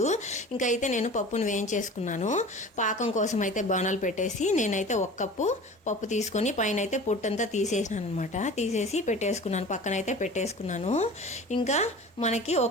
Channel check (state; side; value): normal; both; correlation 0.39